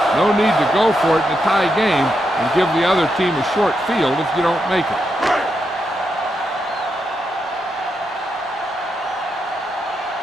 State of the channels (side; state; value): both; normal; correlation 0.83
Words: No need to go for it in a tie game and give the other team a short field if you don't make it.